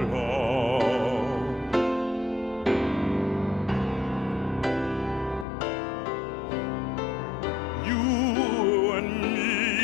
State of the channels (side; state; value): right; drops out; at 5.5 s